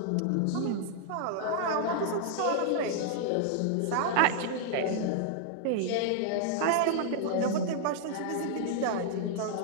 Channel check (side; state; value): both; different; correlation -0.01